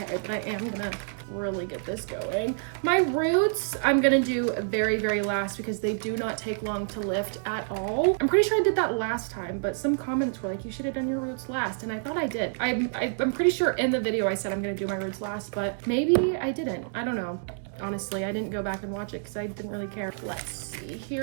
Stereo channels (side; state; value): left; silent; digital silence